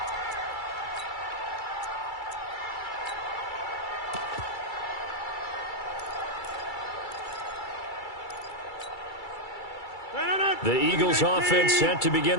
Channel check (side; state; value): right; late; 2.3 ms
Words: The Eagles offense set to begin